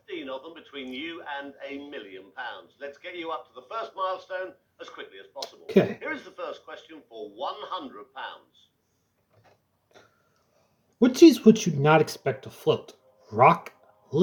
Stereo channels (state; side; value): identical; both; correlation 1.00